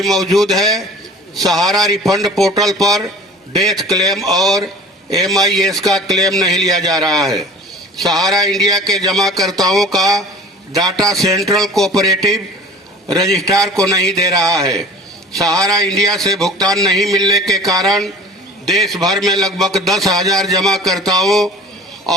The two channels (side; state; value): both; normal; correlation 0.43